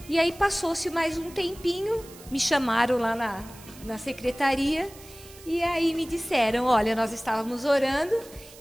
E aí passou-se mais um tempinho, me chamaram lá na secretaria, e aí me disseram, olha, nós estávamos orando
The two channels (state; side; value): noise; right; hiss, 20 dB below the sound